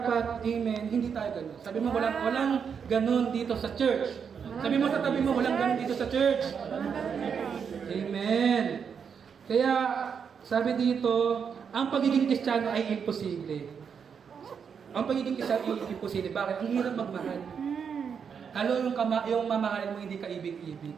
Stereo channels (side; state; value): left; quieter; 6.8 dB